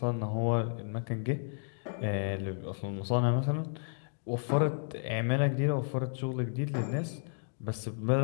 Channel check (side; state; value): right; silent; digital silence